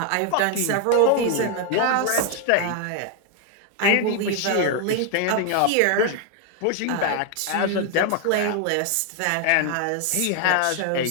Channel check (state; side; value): different; both; correlation 0.00